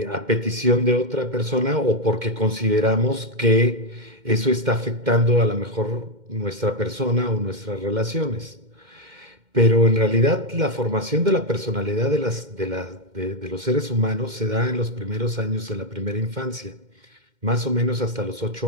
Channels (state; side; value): late; left; 2.1 ms